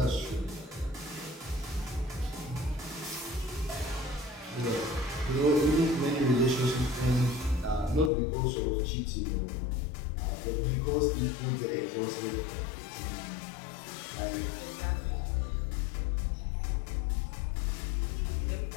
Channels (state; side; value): drops out; right; at 8.1 s